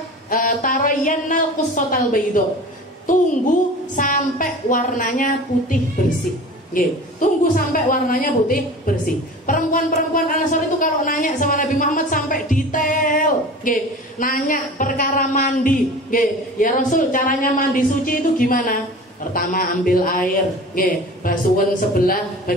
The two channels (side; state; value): both; normal; correlation 0.38